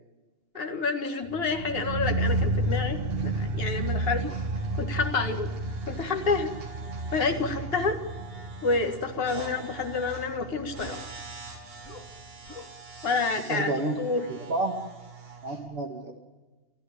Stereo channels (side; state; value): left; late; 2.8 ms